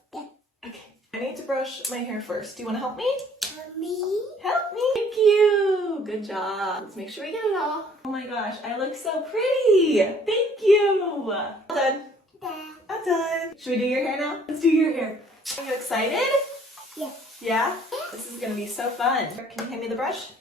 Yeah. Okay. I need to brush my hair first. Do you want to help me? Help me. Help me. Thank you. Good job. Let's make sure we get it all. Oh my gosh, I look so pretty. Thank you. All done. Dad. I'm done. Should we do your hair now? Let's do your hair. Are you excited? Yeah. Yeah? This is going to be so fun. Can you hand me the brush?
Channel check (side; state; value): both; normal; correlation 0.58